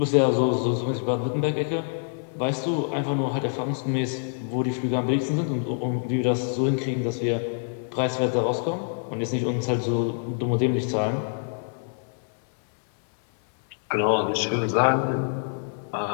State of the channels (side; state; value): right; silent; 61 dB below the other